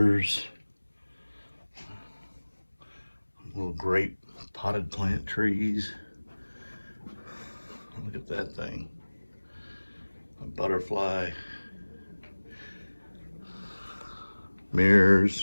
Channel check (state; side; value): inverted; both; correlation -1.00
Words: little grape potted plant trees. Look at that thing, a butterfly,